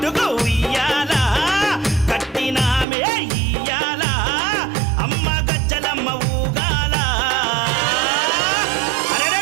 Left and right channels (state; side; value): drops out; left; at 2.9 s